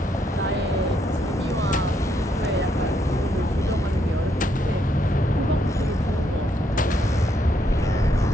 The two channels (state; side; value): normal; both; correlation 0.75